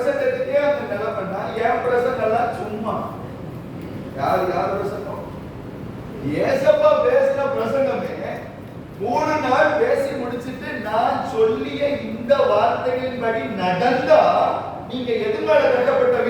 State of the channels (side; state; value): both; identical; correlation 1.00